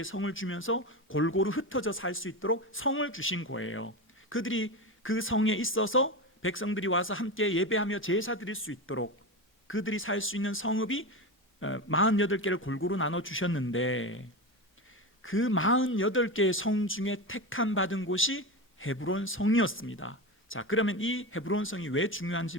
성을 주면서 골고루 흩어져 살 수 있도록 성을 주신 거예요. 그들이 그 성에 있어서 백성들이 와서 함께 예배하며 제사 드릴 수 있도록 그들이 살 수 있는 성읍이 48개를 골고루 나눠 주셨는데, 그 48개의 성 중에 택함 받은 곳이 헤브론 성이었습니다. 자, 그러면 이 헤브론 성이 왜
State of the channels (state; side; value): normal; both; correlation 0.20